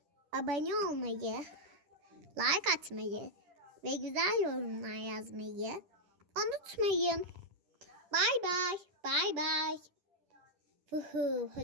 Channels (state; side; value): late; left; 10 ms